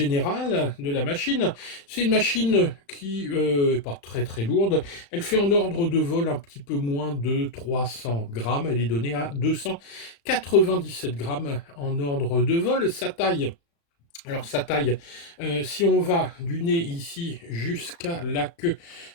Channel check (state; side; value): late; right; 35 ms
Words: de la machine. C'est une machine qui n'est pas très très lourde, elle fait en ordre de vol un petit peu moins de 300 grammes, elle est donnée à 297 grammes en ordre de vol. Sa taille, alors sa taille, si on va du nez ici jusqu'à la queue,